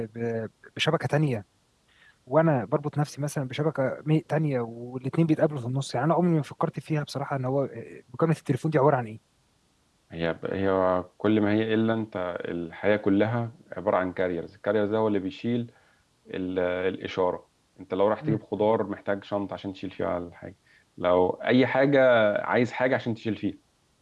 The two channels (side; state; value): both; identical; correlation 1.00